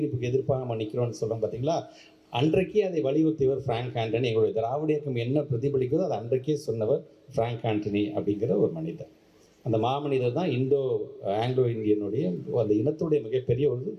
எதிர்ப்பாக நம்ம நிற்கிறோம்னு சொல்கிறோம் பார்த்தீங்களா? அன்றைக்கே அதை வலியுறுத்தியவர் ஃப்ராங்க் ஆண்டனி. எங்களுடைய திராவிட இயக்கம் என்ன பிரதிபலிக்கிறதோ அதை அன்றைக்கே சொன்னவர் ஃப்ராங்க் ஆண்டனி அப்படிங்கிற ஒரு மனிதர். அந்த மாமனிதர் தான் ஆங்கிலோ இந்தியனுடைய அந்த இனத்துடைய மிகப்பெரிய ஒரு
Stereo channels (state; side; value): identical; both; correlation 1.00